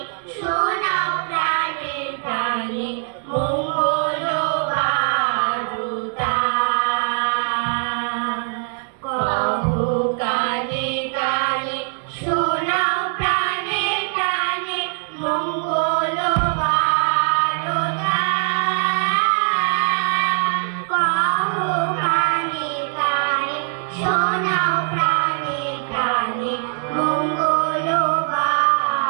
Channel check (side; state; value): left; silent; 60 dB below the other